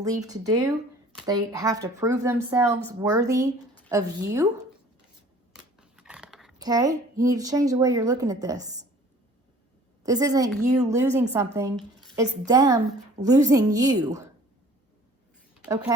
to do. They have to prove themselves worthy of you. Okay? You need to change the way you're looking at this. This isn't you losing something. It's them losing you.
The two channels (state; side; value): normal; both; correlation 0.50